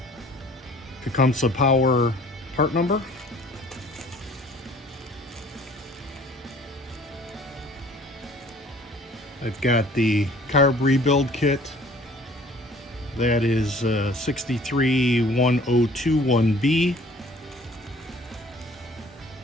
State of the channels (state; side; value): normal; both; correlation 0.52